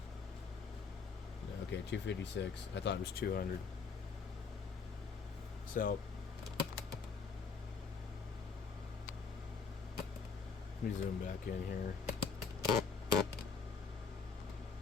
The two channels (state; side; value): quieter; right; 5.2 dB